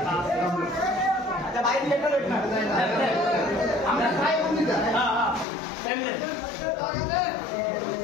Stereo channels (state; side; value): drops out; right; at 5.5 s